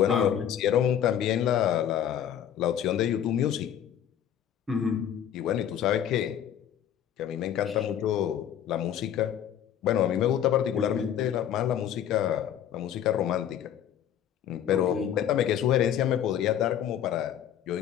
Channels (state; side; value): quieter; right; 10.0 dB